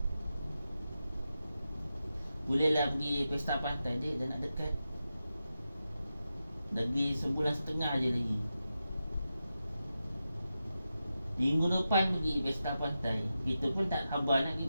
Bolehlah pergi pesta pantai dia dah nak dekat. Lagi sebulan setengah je lagi. Minggu depan pergi pesta pantai. Kita pun tak sabar nak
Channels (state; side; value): inverted; both; correlation -0.90